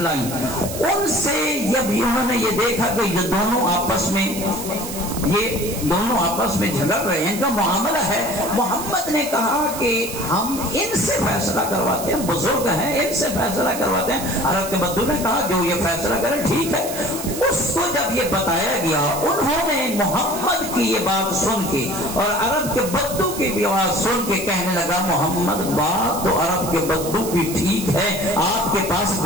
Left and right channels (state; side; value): noise; right; hiss, 9 dB below the sound